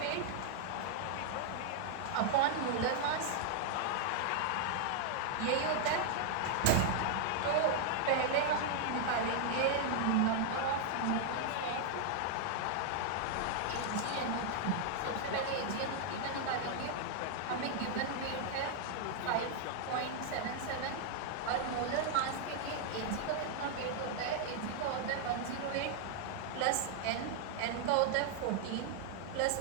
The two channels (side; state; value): both; different; correlation -0.01